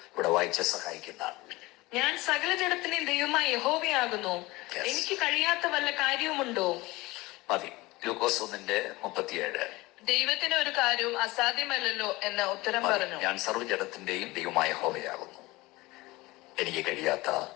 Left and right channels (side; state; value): right; quieter; 20.9 dB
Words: ഇവിടെ വായിച്ച് സഹായിക്കുന്നതാണ്. ഞാൻ സകല ജഡത്തിന്റെയും ദൈവമായ യഹോവയാകുന്നു, എനിക്ക് കഴിയാത്ത വല്ല കാര്യവുമുണ്ടോ? മതി. ലൂക്കോസ് 1:37. ദൈവത്തിന് ഒരു കാര്യവും അസാധ്യമല്ലല്ലോ എന്ന ഉത്തരം പറഞ്ഞു. ഞാൻ സർവ്വജഡത്തിന്റെയും ദൈവമായ യഹോവയാകുന്നു, എനിക്ക് കഴിയാത്ത